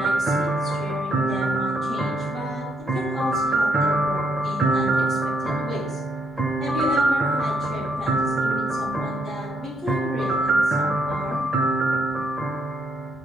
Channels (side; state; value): both; normal; correlation 0.74